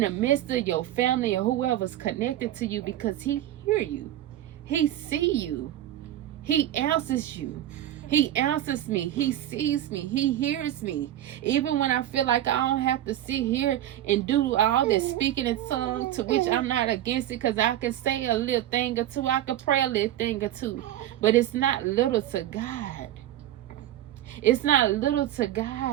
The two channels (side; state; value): left; quieter; 12.7 dB